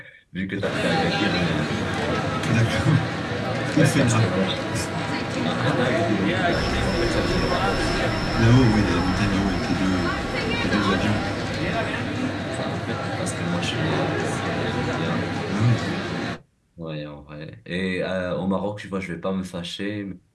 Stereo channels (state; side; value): identical; both; correlation 1.00